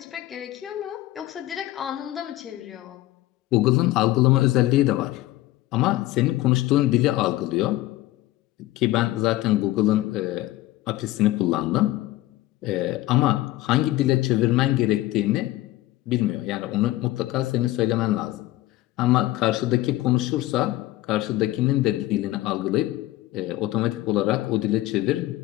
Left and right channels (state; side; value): quieter; right; 16.5 dB